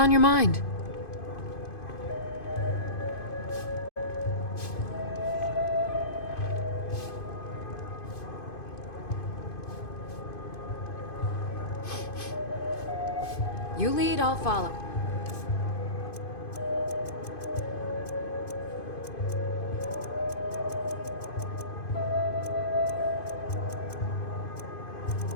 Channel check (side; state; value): right; late; 2.5 ms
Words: your mind? You lead, I'll follow.